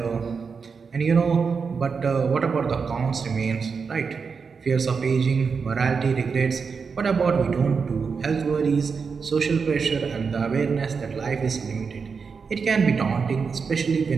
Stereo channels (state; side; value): quieter; left; 5.4 dB